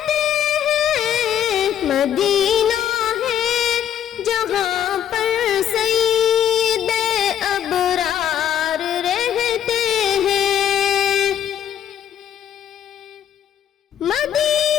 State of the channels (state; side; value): quieter; right; 9.9 dB